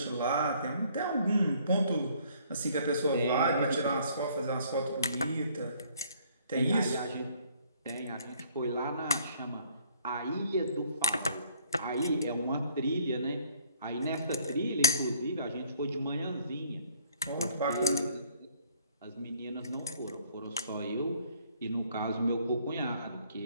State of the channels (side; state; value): both; inverted; correlation -0.61